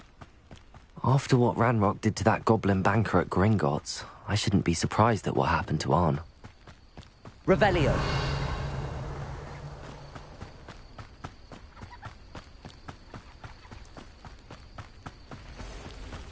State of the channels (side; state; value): both; identical; correlation 1.00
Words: After what Ranrock did to that goblin banker at Gringotts, I shouldn't be surprised at what happened to Arn. Revelio.